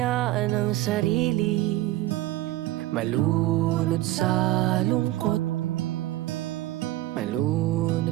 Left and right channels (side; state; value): left; quieter; 15.9 dB